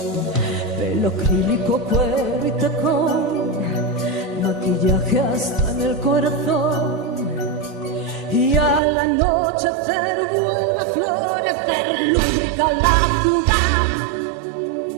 Pelo acrílico, cuero y tacón, maquillaje hasta en el corazón. Y al anochecer vuelve a florecer, lúbrica la ciudad.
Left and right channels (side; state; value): left; drops out; at 8.8 s